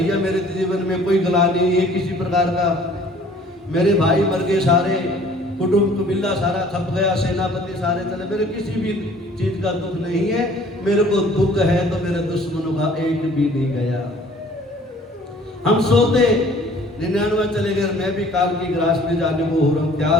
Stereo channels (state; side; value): normal; both; correlation 0.53